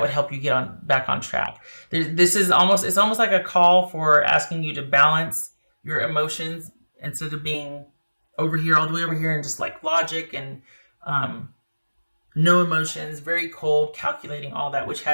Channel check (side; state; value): both; inverted; correlation -1.00